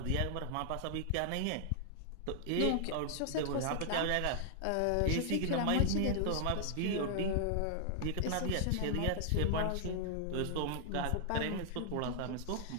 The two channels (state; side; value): different; both; correlation -0.01